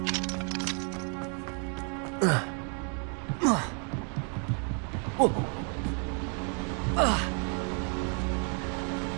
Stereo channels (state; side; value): quieter; left; 39.9 dB